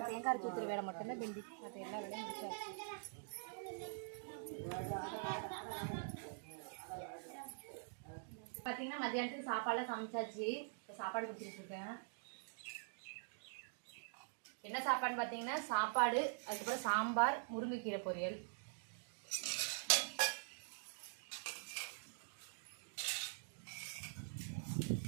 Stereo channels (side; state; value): left; silent; digital silence